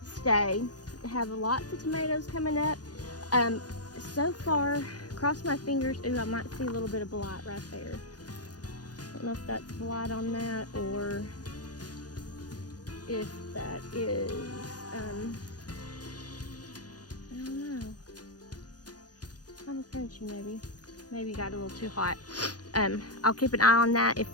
stay. I have lots of tomatoes coming up. so far, cross my fingers. Ooh, I might see a little bit of blight right there. I don't know if that's blight on that or if that is, I don't know. Kind of crunchy maybe. Maybe got a little too hot. I'll keep an eye on that. If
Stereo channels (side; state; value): right; late; 0.69 ms